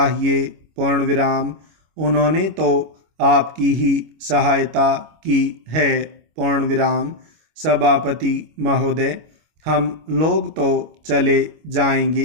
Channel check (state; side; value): late; left; 25 ms